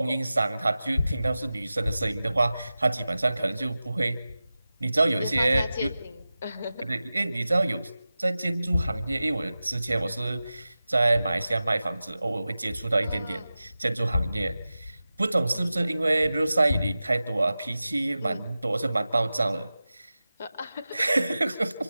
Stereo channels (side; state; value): both; inverted; correlation -0.95